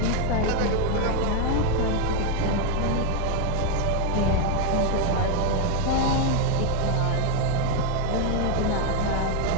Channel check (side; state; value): both; different; correlation 0.01